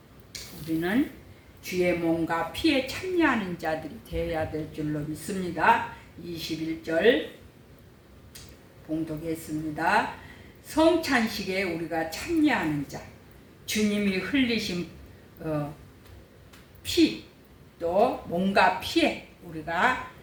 우리는 주의 몸과 피에 참여하는 자들이 되어야 될 줄로 믿습니다. 21절 봉독했습니다. 성찬식에 우리가 참여하는 자, 주님이 흘리신 피, 또 몸과 피에 우리가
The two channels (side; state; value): both; identical; correlation 1.00